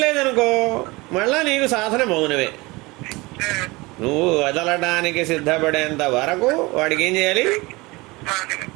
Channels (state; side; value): quieter; left; 23.2 dB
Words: మళ్ళా నీకు సాధన మౌనమే. నువ్వు వదలడానికి సిద్ధపడేంత వరకు వాడికి ఏం చేయాలి?